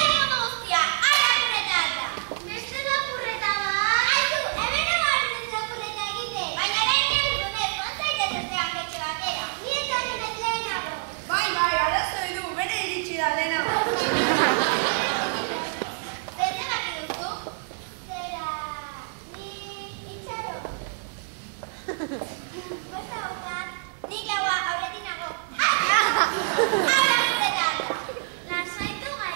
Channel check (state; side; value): silent; left; 61 dB below the other